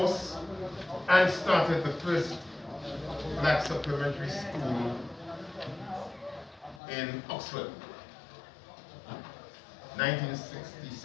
and started the first black supplementary school in Oxford,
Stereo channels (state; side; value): drops out; right; at 6.8 s